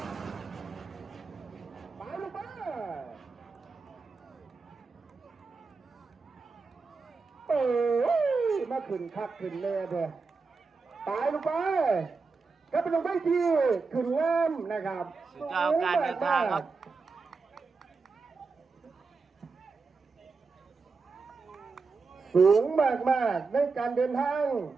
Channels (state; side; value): quieter; left; 4.4 dB